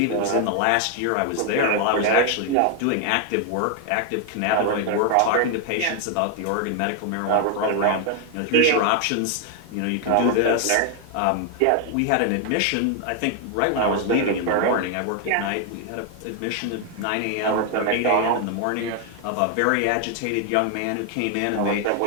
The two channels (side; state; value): both; different; correlation 0.00